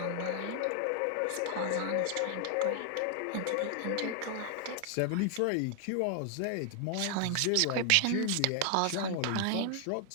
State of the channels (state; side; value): different; both; correlation 0.00